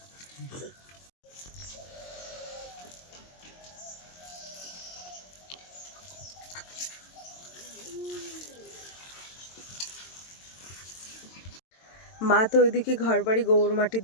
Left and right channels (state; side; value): late; right; 22 ms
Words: মা তো ওইদিকে ঘর বাড়ি গোবর মাটি